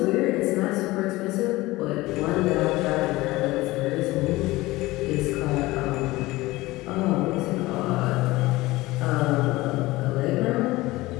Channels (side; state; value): right; quieter; 19.5 dB